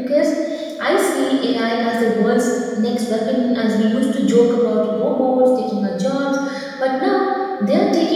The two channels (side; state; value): both; identical; correlation 1.00